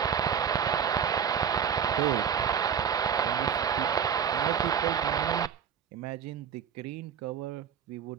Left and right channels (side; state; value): left; quieter; 7.7 dB